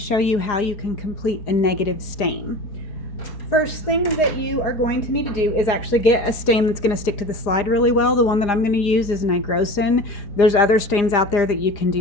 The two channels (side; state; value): right; late; 4.9 ms